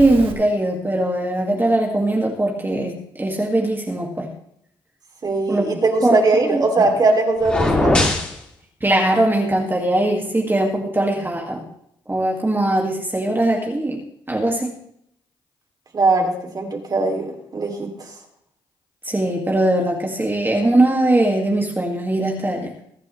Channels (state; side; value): normal; both; correlation 0.81